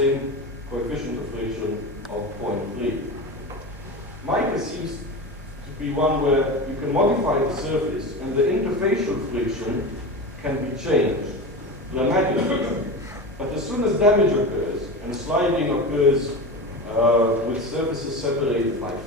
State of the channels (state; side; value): normal; both; correlation 0.26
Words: coefficient of friction of 0.3. Mica seems to be one where you can modify the surface, and the interfacial friction can be changed dramatically. But as soon as damage occurs, and sliding occurs with surfaces separated by